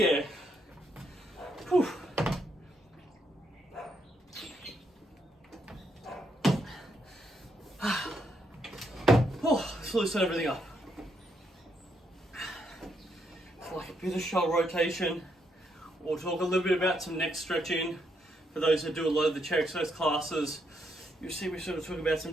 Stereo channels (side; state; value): both; normal; correlation 0.77